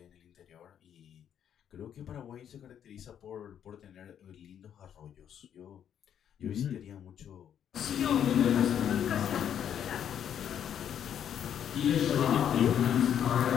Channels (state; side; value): quieter; right; 9.3 dB